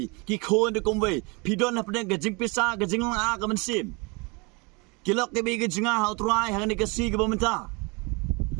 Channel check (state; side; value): quieter; left; 28.8 dB